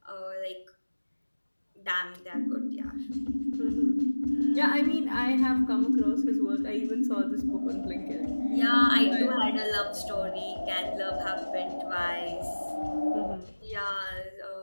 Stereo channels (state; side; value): inverted; both; correlation -1.00